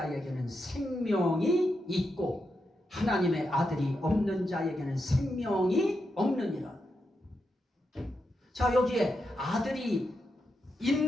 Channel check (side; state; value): both; normal; correlation 0.85